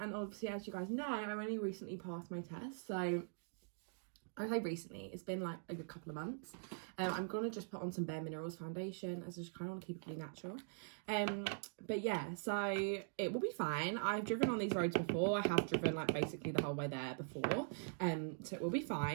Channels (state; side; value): silent; left; digital silence